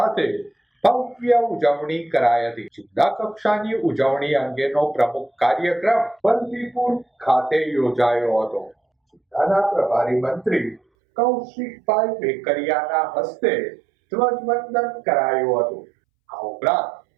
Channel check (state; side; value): drops out; left; at 10.8 s